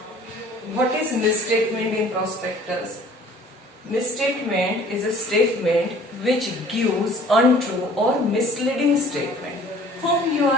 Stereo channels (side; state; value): both; normal; correlation 0.52